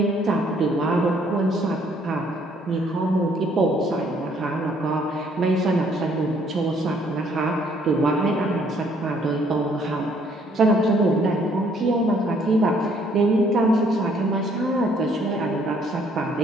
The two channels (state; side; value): normal; both; correlation 0.64